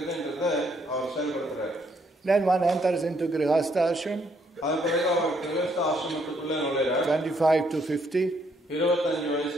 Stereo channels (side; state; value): both; normal; correlation 0.71